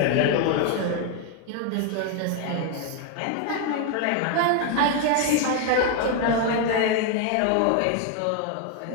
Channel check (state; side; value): different; both; correlation 0.01